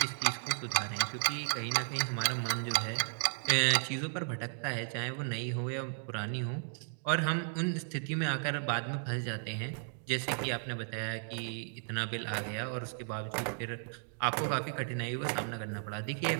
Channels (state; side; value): silent; left; digital silence